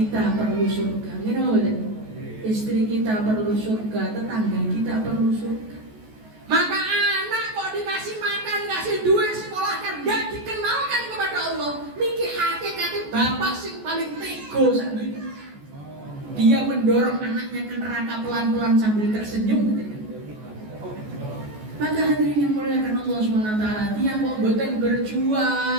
perlu surga, ini boleh. Istri kita perlu surga, tetangga kita perlu surga. Maka anak kok dikasih makan, kasih duit, sekolahkan, gak dikenalkan kepada Allah. Niki hakikatnya bapak sing paling tego saat ini. Dia mendorong anaknya ke neraka pelan-pelan sambil tersenyum. Maka hadirin yang muliakan Allah SWT, tiang kok boten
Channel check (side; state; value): left; late; 14 ms